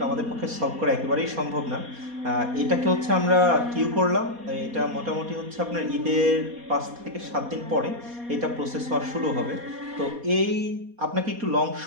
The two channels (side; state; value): left; late; 4.2 ms